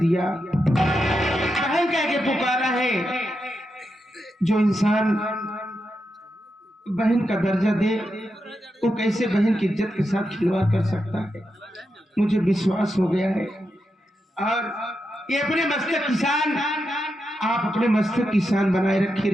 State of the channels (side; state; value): both; normal; correlation 0.86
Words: बहन कह के पुकारा है। जो इंसान बहन का दर्जा दे वो कैसे बहन की इज्जत के साथ खिलवाड़ कर सकता है? मुझे विश्वास हो गया है। और ये अपने मस्तक किसान, आप अपने मस्तक किसान बनाए रखे